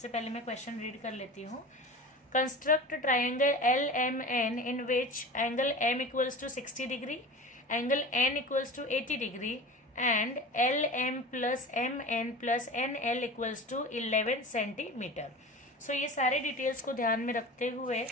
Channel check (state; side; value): normal; both; correlation 0.34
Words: पहले मैं क्वेश्चन रीड कर लेती हूँ। Construct triangle LMN in which angle M equals to 60 degree, angle N equals to 80 degree and LM plus MN plus NL equals to 11 centimetre. So ये सारे डिटेल्स को ध्यान में रखते हुए